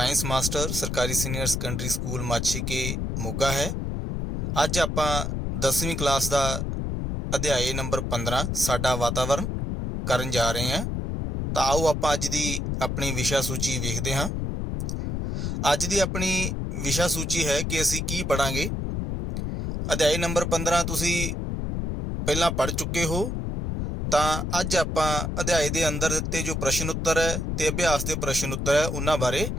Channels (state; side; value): noise; left; rumble, 2 dB below the sound